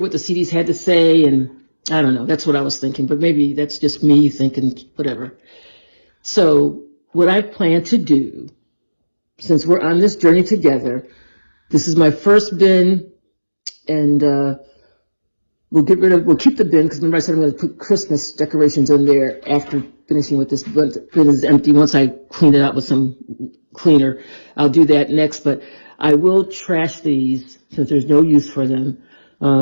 the CDs had to say, and I don't know, that's what I was thinking, but maybe that's just me thinking whatever. So what I plan to do, since we're on this journey together, this is my first bin, and we'll keep the bin, because remember I said I'm going to put Christmas decorations in there after finishing with this bin is empty. Once I clean it out with some cleaner, I'll do that next, but I will trash these since there's no use for them.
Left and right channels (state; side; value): inverted; both; correlation -1.00